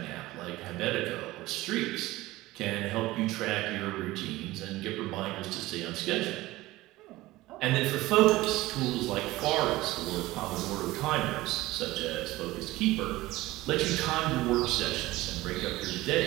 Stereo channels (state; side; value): quieter; left; 18.3 dB